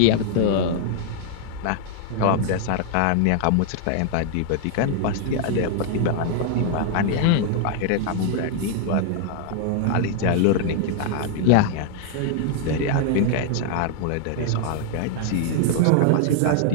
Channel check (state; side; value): different; both; correlation 0.00